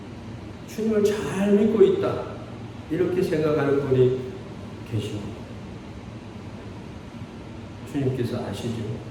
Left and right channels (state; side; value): identical; both; correlation 1.00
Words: 주님을 잘 믿고 있다, 이렇게 생각하는 분이 계십니다. 주님께서 아시죠?